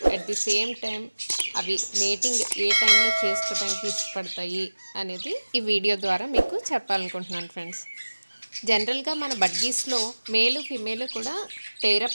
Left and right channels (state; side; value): inverted; both; correlation -1.00